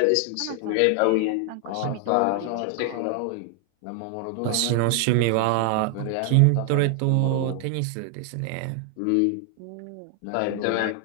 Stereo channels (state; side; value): different; both; correlation 0.00